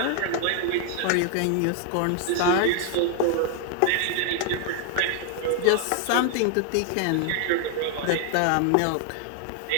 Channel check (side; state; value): both; different; correlation 0.00